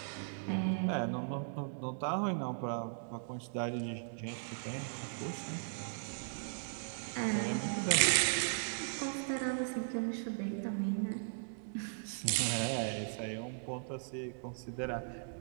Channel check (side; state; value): left; silent; digital silence